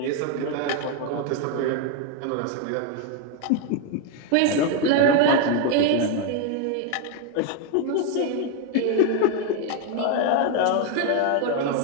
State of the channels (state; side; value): different; both; correlation 0.01